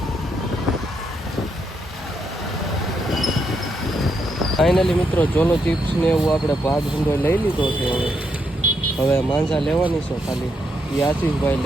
ફાઇનલી મિત્રો ઝોલો ચિપ્સ ને એવું આપણે ભાગ ધંધો લઈ લીધો છે. હવે માંજા લેવાની છે. ખાલી આશીષભાઈ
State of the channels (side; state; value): both; normal; correlation 0.79